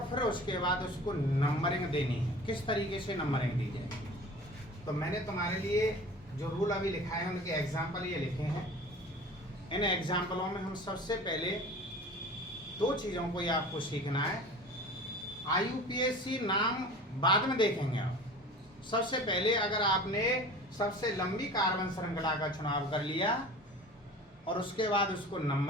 फिर उसके बाद उसको नंबरिंग देनी है, किस तरीके से नंबरिंग दी जाए। तो मैंने तुम्हारे लिए जो रूल अभी लिखाए हैं उनके एग्जाम्पल ये लिखे हैं। इन एग्जाम्पलों में हम सबसे पहले दो चीज़ों को ये आपको सीखना है। आईयूपीएसी नाम बाद में देखेंगे आप। सबसे पहले अगर आपने सबसे लंबी कार्बन श्रृंखला का चुनाव कर लिया और उसके बाद उसको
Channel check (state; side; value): normal; both; correlation 0.40